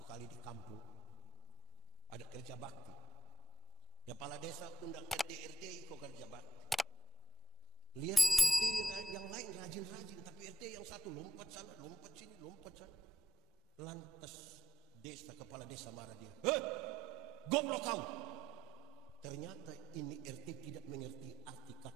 kali di kampung ada kerja bakti. Kepala desa undang RT ikut kerja bakti. Lihat RT yang lain rajin-rajin, tapi RT yang satu lompat sana, lompat sini, lompat sana. Lantas kepala desa marah dia. Goblok kau! Ternyata ini RT tidak mengerti arti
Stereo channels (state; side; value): normal; both; correlation 0.76